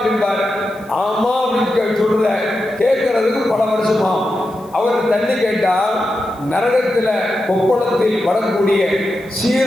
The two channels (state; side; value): noise; left; hiss, 27 dB below the sound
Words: ஆமா அப்படின்னு சொல்ற கேட்கறதுக்கு பல வருஷமா. அவர் தண்ணி கேட்டால் நரகத்தில் கொப்பளத்தில் வரக்கூடிய